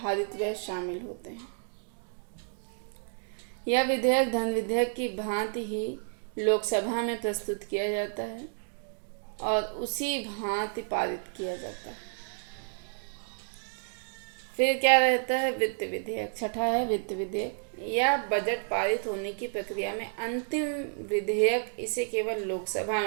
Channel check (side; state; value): left; silent; digital silence